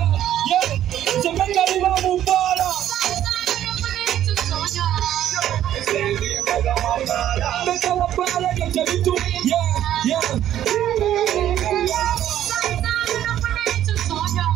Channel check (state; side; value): quieter; left; 11.6 dB